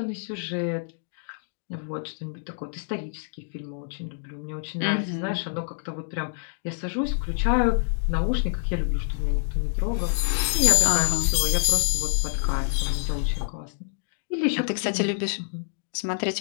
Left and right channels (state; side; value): silent; right; digital silence